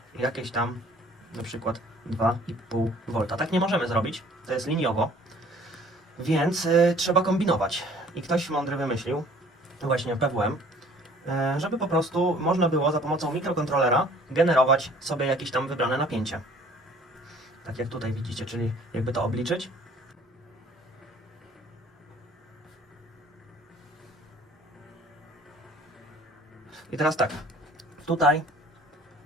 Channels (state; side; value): normal; both; correlation 0.54